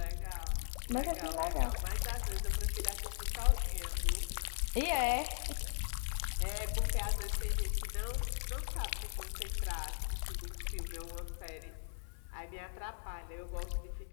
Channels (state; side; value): silent; right; 52 dB below the other